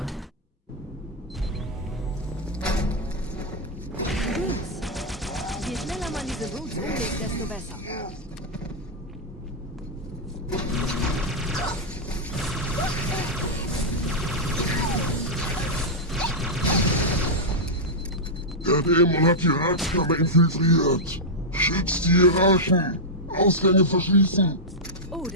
Je schneller man diese Roots umlegt, desto besser. Der Dämon hat die Ratskammer infiltriert. Schützt die Hierarchen. Ausgänge verschließen. Oh,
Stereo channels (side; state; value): both; normal; correlation -0.06